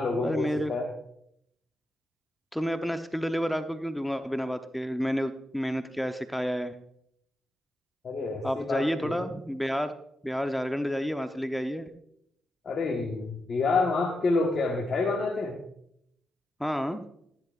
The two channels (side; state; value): both; normal; correlation 0.87